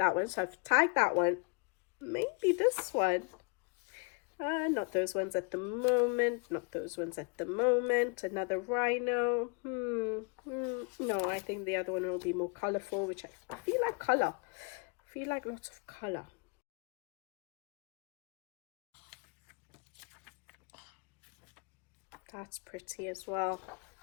one, so I've tagged that one. Maybe this one. Not those ones at the moment. Not those ones at the moment. Another rhino. No, I think the other one will be more colourful, which I feel like colour. I feel like lots of colour. That's pretty as well.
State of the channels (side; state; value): right; quieter; 32.7 dB